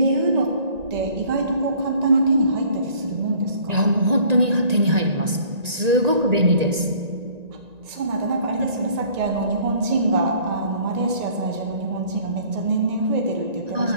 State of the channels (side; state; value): left; late; 1.9 ms